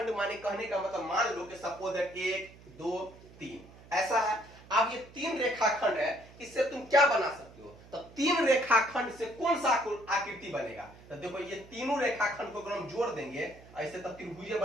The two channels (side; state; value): right; noise; hum, 21 dB below the sound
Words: माने कहने का मतलब, मान लो कि सपोज है 1 2 3 ऐसा है। अब ये तीन रेखाखंड है, इससे तुम क्या बना सकते हो, तो तीन रेखाखंड से कौन सा आकृति बनेगा, तो देखो ये तीनों रेखाखंड को अगर हम जोड़ देंगे ऐसे, तब त्रिभुज